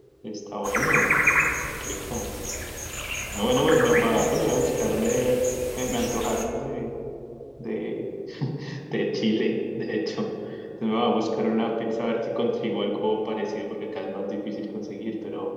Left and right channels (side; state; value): both; identical; correlation 1.00